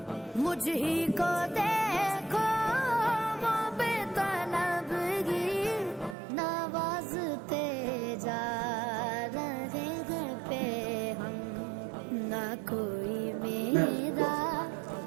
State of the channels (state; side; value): drops out; left; at 6.2 s